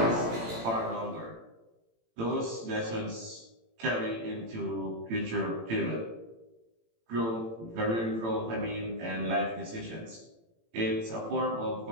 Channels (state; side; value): late; left; 18 ms